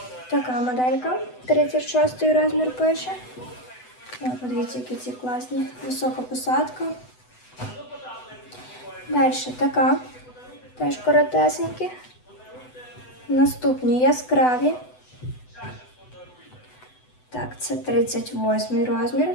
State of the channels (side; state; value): right; late; 8.0 ms